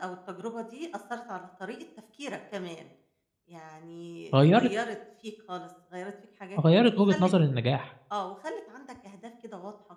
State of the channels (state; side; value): identical; both; correlation 1.00